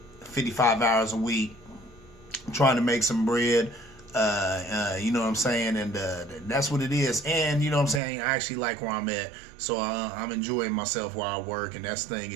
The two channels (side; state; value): left; drops out; at 8.0 s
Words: 55 hours a week, trying to make some bread. You know what I'm saying? And that's what it is. And you know what I'm saying? I actually like where I'm at. So I'm enjoying myself while I work. And that's the thing.